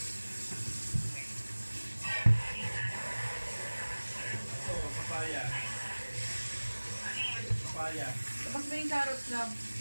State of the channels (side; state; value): both; inverted; correlation -1.00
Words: Ito, papaya. Papaya. Labas mo yung carrots na.